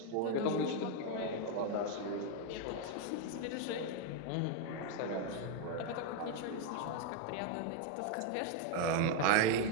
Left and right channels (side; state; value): both; different; correlation 0.01